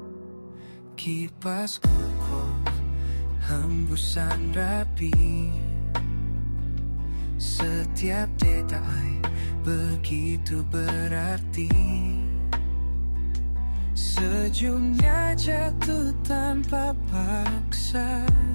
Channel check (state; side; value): inverted; both; correlation -1.00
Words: Kipas kokoh, hembusan rapi. Setiap detai begitu berarti. Sejumnya jatuh tanpa paksa.